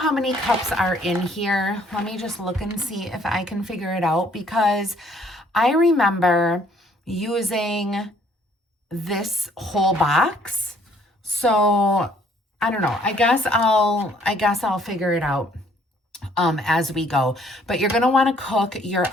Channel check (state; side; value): normal; both; correlation 0.62